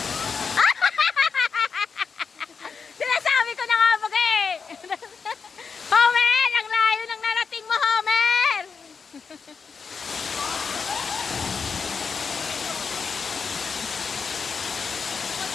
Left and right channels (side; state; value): right; quieter; 5.5 dB